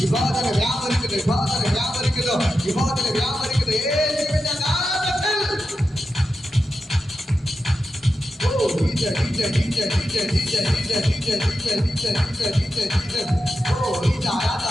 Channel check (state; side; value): normal; both; correlation 0.89